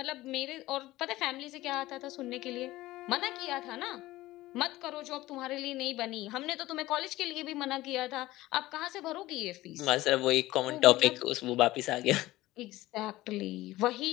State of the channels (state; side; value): quieter; right; 17.3 dB